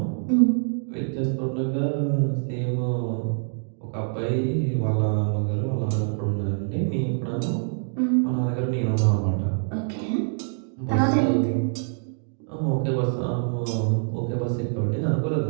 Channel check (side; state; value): left; silent; digital silence